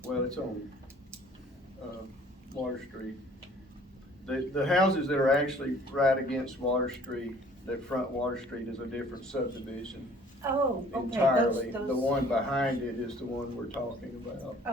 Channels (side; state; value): both; normal; correlation 0.54